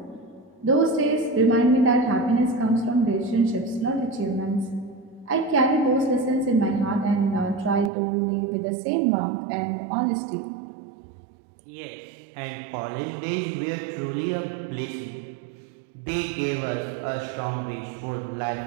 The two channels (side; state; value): left; drops out; at 7.9 s